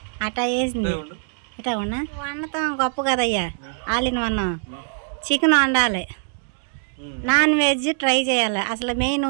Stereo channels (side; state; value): left; silent; digital silence